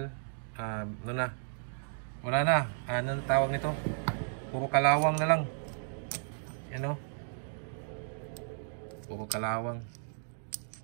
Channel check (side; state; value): left; silent; digital silence